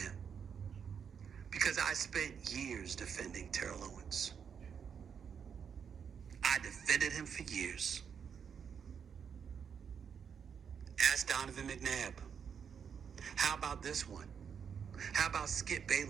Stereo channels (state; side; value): quieter; left; 7.1 dB